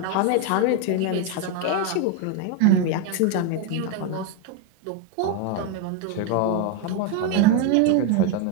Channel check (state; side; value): different; both; correlation 0.01